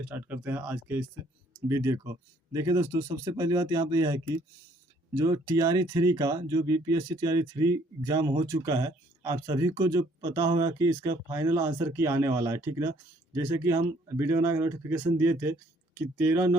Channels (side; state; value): both; normal; correlation 0.63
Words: स्टार्ट करते हैं आज के इस वीडियो को। देखिए दोस्तों, सबसे पहली बात यहाँ पे यह है कि जो टीआरई 3 का जो बीपीएससी टीआरई 3 एग्ज़ाम हो चुका है, आप सभी को जो पता होगा कि इसका फाइनल आंसर की आने वाला है, ठीक ना। जैसे कि हम वीडियो बना के नोटिफिकेशन दिए थे कि